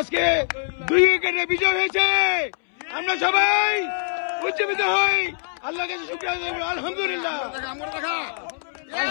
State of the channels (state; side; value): silent; right; 63 dB below the other